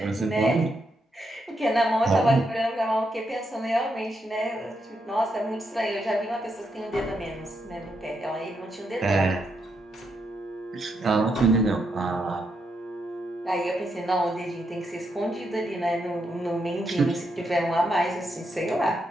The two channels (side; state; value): both; normal; correlation 0.81